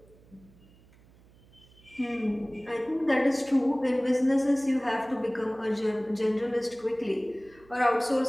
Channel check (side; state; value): right; noise; hum, 27 dB below the sound